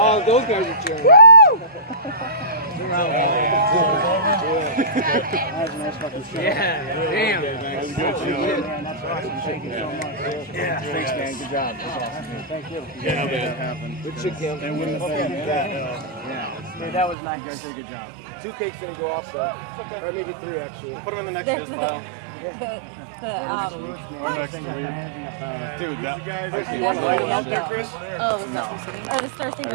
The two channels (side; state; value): left; drops out; at 17.2 s